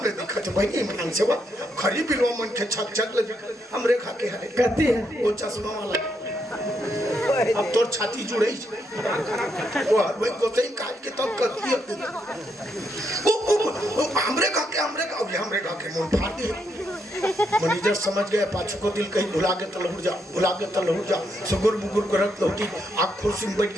रे दिखा छ भाई ईमान से वो खरी बिलवा मन के छक ले हमरे खा के हरे कहती है वो चश्मा वाला अब तोर छाती जुड़े वो भाई को सही काट के तब करती है वो हमरे का के मुंह फाड़ दे मैनेजर समझ गए पाछू को दिल कहीं भुला के तलहुर जा सुगुर बुगुर करत लौटी आँख कुर्सी में बैठ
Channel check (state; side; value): normal; both; correlation 0.78